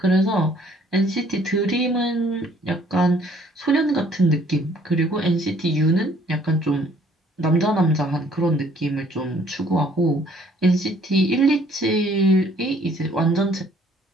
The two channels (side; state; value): both; normal; correlation 0.60